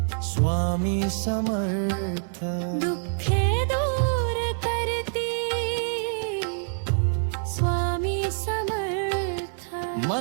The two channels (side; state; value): left; silent; digital silence